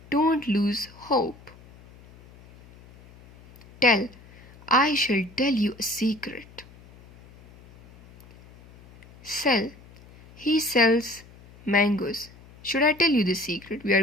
don't lose hope. Tell. I shall tell you a secret. Sell. He sells mangoes. Should I tell you the secret? We are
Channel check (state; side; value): noise; left; hum, 23 dB below the sound